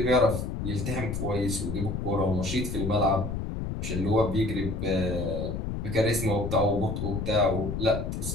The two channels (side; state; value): left; noise; rumble, 3 dB below the sound